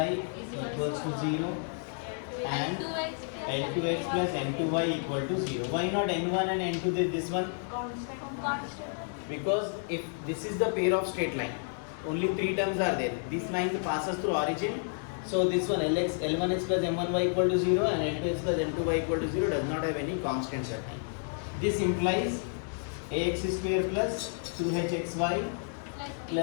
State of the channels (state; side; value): silent; right; 57 dB below the other